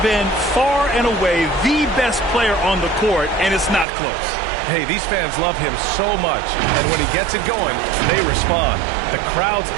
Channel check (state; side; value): drops out; left; at 3.9 s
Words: been far and away the best player on the court, and it's not close. Hey, these fans love him so much, and when he gets it going, they respond. The crowd's